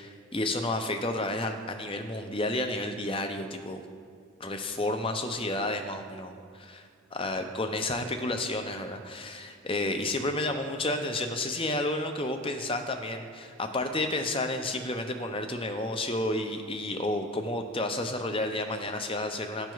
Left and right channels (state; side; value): normal; both; correlation 0.32